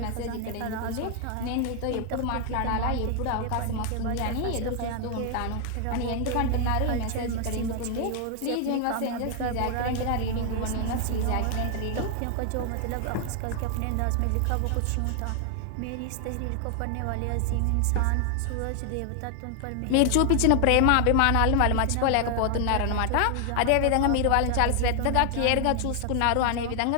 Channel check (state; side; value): different; both; correlation 0.00